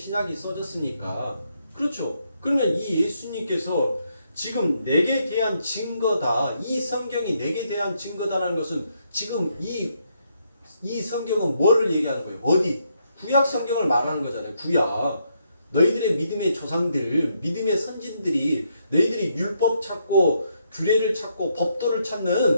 써졌으니까 그렇죠. 그러면 이 예수님께서 지금 내게 대한 증거다. 이 성경이 내게 대한 증거다라는 것은 지금 이 성경은 뭐를 얘기하는 거예요? 어디? 구약 성경을 말하는 거잖아요. 구약. 너희들의 믿음의 조상들, 믿음의 선진들이 너희들이 율법 찾고 규례를 찾고 법도를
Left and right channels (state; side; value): inverted; both; correlation -0.76